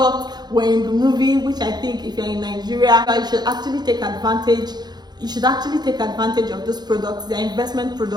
were in the movie, which I think if you're in Nigeria, you should actually take advantage. You should actually take advantage of those products. They're investment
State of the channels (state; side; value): late; left; 0.20 ms